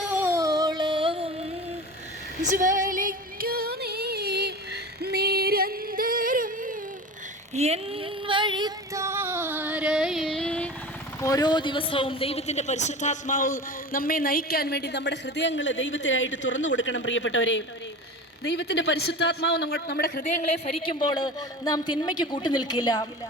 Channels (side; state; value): both; normal; correlation 0.32